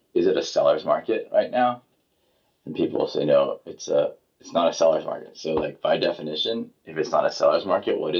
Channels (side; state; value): both; identical; correlation 1.00